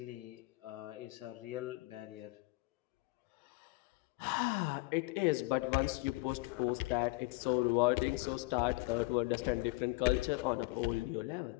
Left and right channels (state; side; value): quieter; right; 23.5 dB